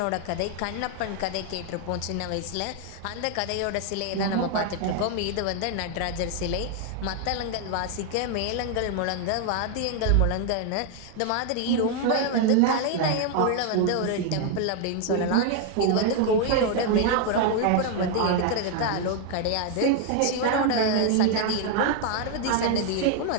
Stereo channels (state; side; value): different; both; correlation 0.00